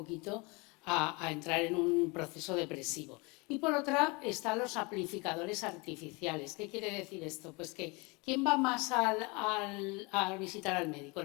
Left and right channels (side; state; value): right; quieter; 27.6 dB